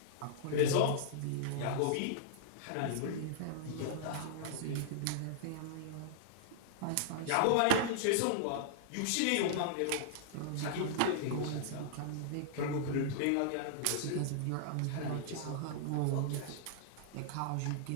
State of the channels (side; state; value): both; different; correlation -0.01